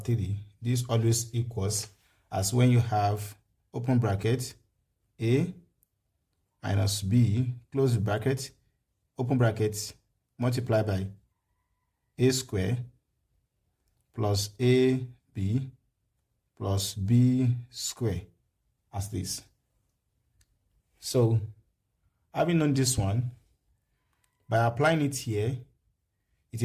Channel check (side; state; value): both; identical; correlation 1.00